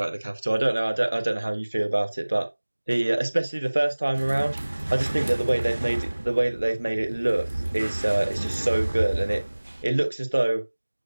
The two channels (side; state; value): both; inverted; correlation -1.00